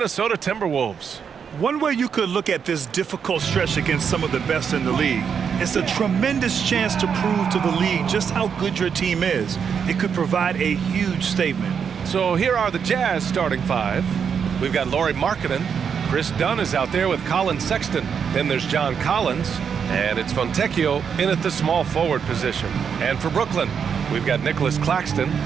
Timberwolves. One way you could look at this difficult stretch against some of the best in the league, it's a tremendous chance to prove to the league just how good your team is. It could provide a huge statement. So here are the Jazz starting five. We've got Lauri Markkanen. Chris Dunn is out there with Colin Sexton. Then there's John Collins. And it's Fontecchio in at the small forward position. And for Brooklyn, we've got Nicholas Claxton.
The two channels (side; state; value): left; quieter; 7.0 dB